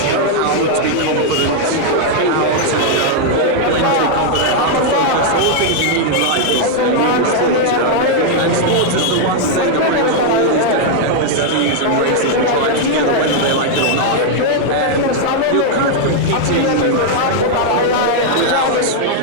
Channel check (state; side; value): different; both; correlation 0.00